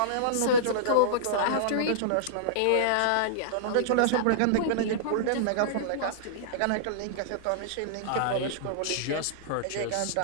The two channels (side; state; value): both; different; correlation -0.03